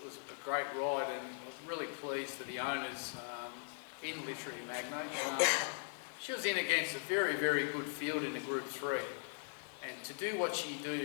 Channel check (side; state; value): right; silent; digital silence